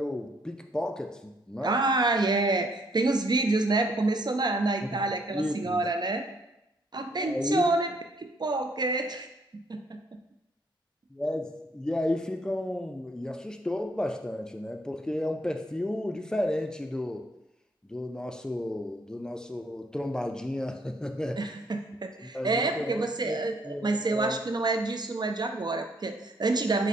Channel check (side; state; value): both; normal; correlation 0.67